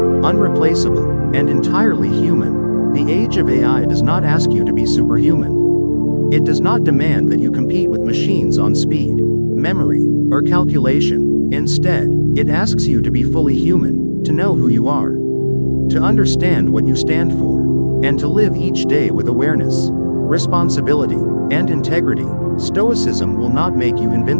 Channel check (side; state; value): both; inverted; correlation -1.00